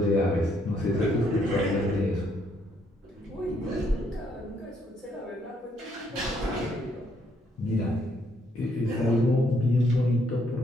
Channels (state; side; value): normal; both; correlation 0.71